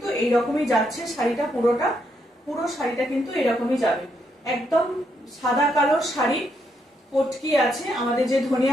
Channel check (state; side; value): normal; both; correlation 0.77